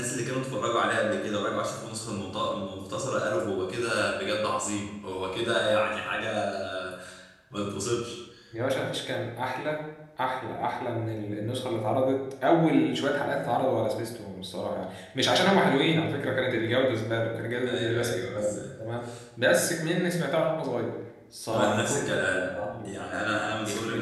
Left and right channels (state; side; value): identical; both; correlation 1.00